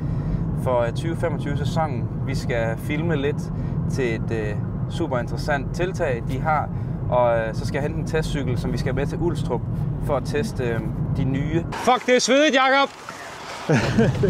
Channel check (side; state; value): both; identical; correlation 1.00